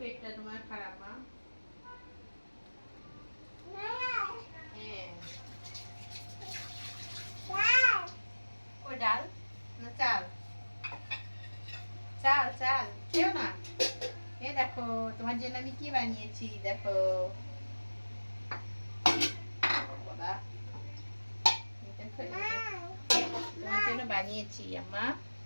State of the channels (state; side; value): inverted; both; correlation -1.00